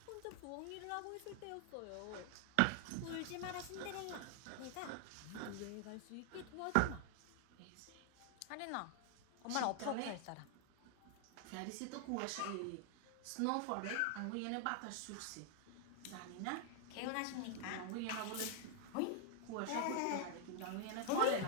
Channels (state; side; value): different; both; correlation 0.00